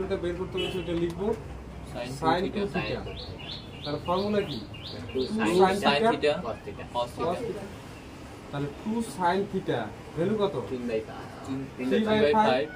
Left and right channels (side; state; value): both; identical; correlation 1.00